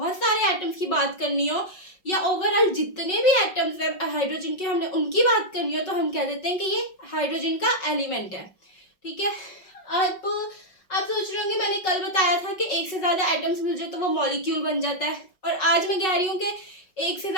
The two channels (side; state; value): right; late; 5.4 ms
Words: सारे एटम्स की बात करनी हो या ओवरऑल जितने भी एटम्स हैं हाइड्रोजन के हमने उनकी बात करनी हो, तो हम कह देते हैं कि ये हाइड्रोजन का एलिमेंट है। ठीक है। अब आप सोच रहे होंगे मैंने कल बताया था कि एक से ज़्यादा एटम्स मिल जाए तो वो मॉलिक्यूल बन जाता है, और आज मैं कह रही हूँ कि एक से